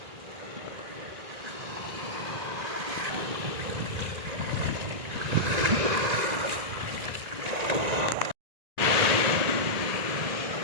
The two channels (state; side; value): late; left; 1.9 ms